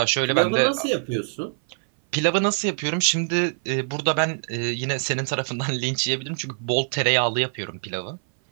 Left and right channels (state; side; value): silent; left; 58 dB below the other